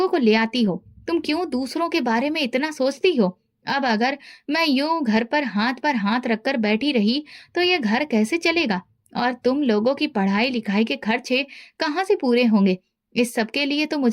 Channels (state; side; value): identical; both; correlation 1.00